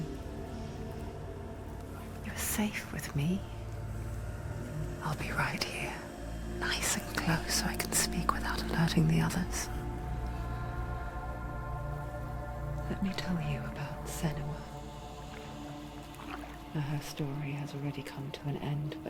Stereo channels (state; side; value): identical; both; correlation 1.00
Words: You're safe with me. I'll be right here, nice and close so I can speak without alerting the others. Let me tell you about Senua. Her story has already come to an end,